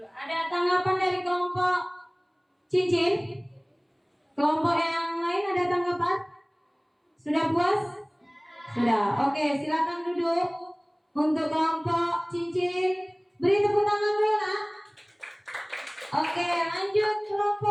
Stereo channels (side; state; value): both; identical; correlation 1.00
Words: Ada tanggapan dari kelompok cincin? Kelompok yang lain ada tanggapan? Sudah puas? Sudah. Oke, silakan duduk. Untuk kelompok cincin, beri tepuk tangan dulu nak. Oke, lanjut